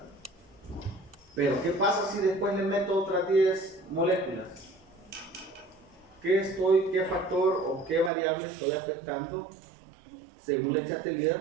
Pero ¿qué pasa si después le meto otras 10 moléculas? ¿Qué factor o qué variable estoy afectando según Le Chatelier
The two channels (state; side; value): drops out; left; at 8.1 s